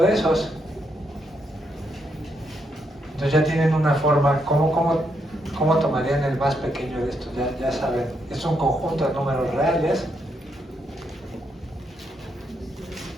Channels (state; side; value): normal; both; correlation 0.78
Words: esos. Entonces ya tienen una forma, ¿cómo tomarían el más pequeño de estos? Ya saben, es un conjunto de números reales.